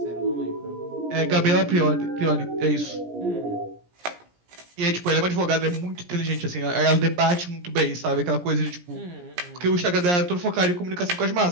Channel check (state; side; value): late; left; 17 ms